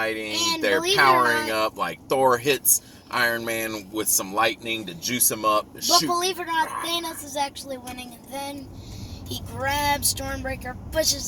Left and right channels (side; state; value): both; identical; correlation 1.00